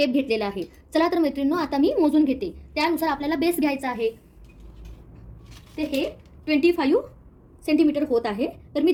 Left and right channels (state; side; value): identical; both; correlation 1.00